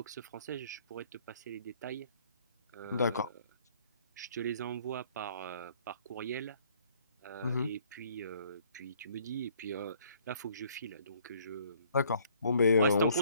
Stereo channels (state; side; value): inverted; both; correlation -0.62